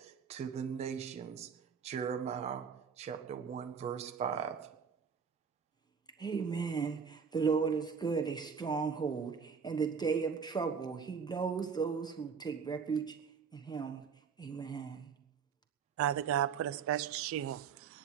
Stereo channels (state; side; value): quieter; left; 6.4 dB